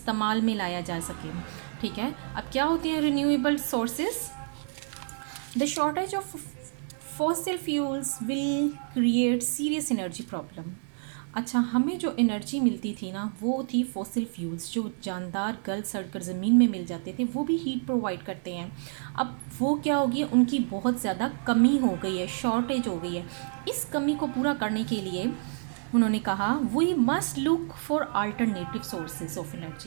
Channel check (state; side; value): silent; left; digital silence